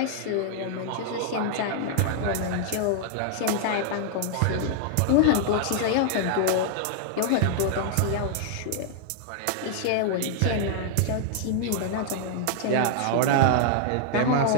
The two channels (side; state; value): both; different; correlation 0.00